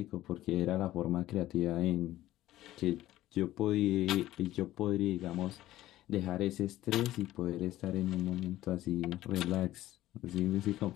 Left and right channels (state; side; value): quieter; right; 14.9 dB